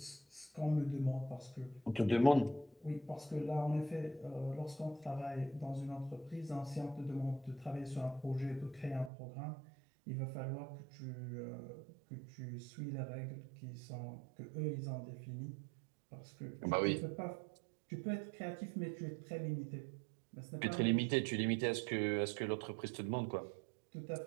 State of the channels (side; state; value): left; drops out; at 9.1 s